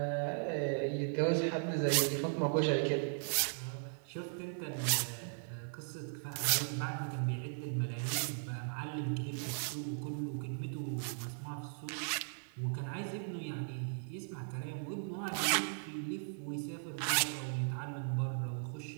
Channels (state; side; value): silent; left; 53 dB below the other